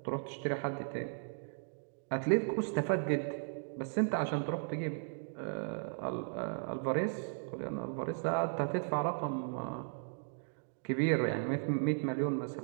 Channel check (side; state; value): left; silent; digital silence